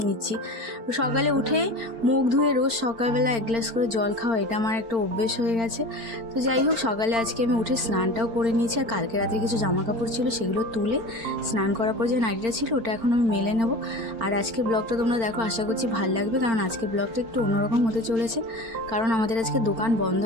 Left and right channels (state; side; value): late; left; 4.4 ms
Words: নিচ্ছি। সকালে উঠে মুখ ধুয়ে রোজ সকালবেলা এক গ্লাস করে জল খাওয়া, এটা আমার একটা অভ্যেস হয়ে গেছে। তো যাই হোক, সকালে আজকে আমি উঠে স্নানটাও করে নিয়েছি। আর কালকে রাতে কিছু জামা কাপড় ছিল, সেগুলো তুলে স্নান করার পর যে নাইটিটা ছিল ওটা এখন আমি মেলে নেব। আর আজকের ব্লগটা তোমরা দেখো, আশা করছি ভালো লাগবে, কারণ আজকের ব্লগটা একটু অন্যরকম হতে চলেছে। কারণ আমাদের আজকে দোকান বন্ধ